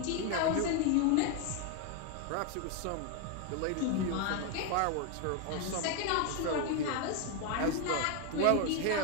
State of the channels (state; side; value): different; both; correlation 0.01